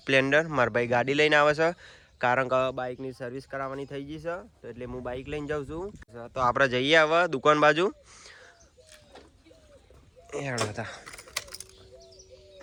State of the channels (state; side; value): identical; both; correlation 1.00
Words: સ્પ્લેન્ડર. મારા ભાઈ ગાડી લઈને આવે છે, કારણ કે બાઇકની સર્વિસ કરાવવાની થઈ ગઈ છે, તો એટલે હું બાઇક લઈને જાઉં છું. તો આપણે જઈએ હવે દુકાન બાજુ. હતા